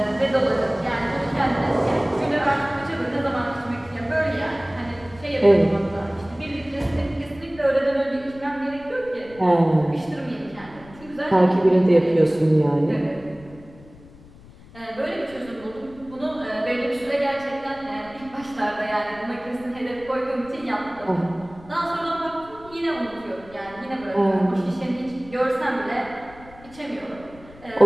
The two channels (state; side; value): noise; left; rumble, 21 dB below the sound